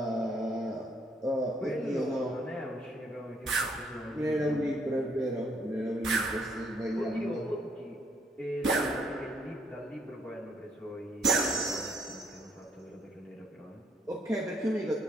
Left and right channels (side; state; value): both; normal; correlation 0.69